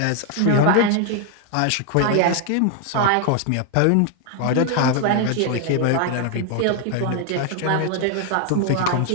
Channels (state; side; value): different; both; correlation 0.00